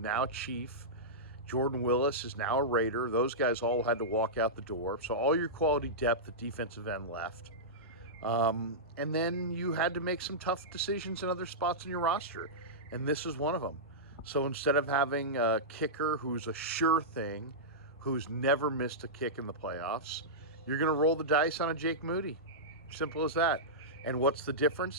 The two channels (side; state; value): both; normal; correlation -0.13